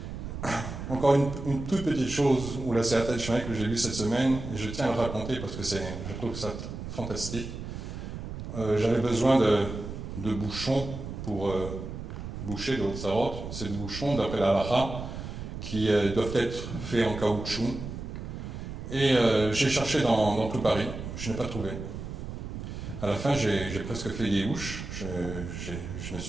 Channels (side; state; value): right; noise; rumble, 8 dB below the sound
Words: Encore une toute petite chose, ou la Siyata d'Ishmael que j'ai lue cette semaine, et je tiens à le raconter parce que je trouve ça fantastique. J'avais besoin de bouchons pour boucher de Hotzarot. C'est des bouchons, d'après la halakha, qui doivent être faits en caoutchouc. Et j'ai cherché dans tout Paris, je n'ai pas trouvé. À la fin, j'ai presque fait des houches, je me